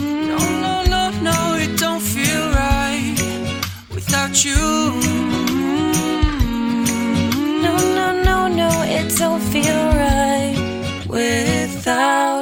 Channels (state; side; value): identical; both; correlation 1.00